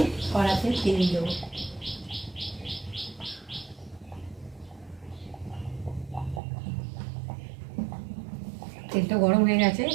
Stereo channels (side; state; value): left; drops out; at 6.4 s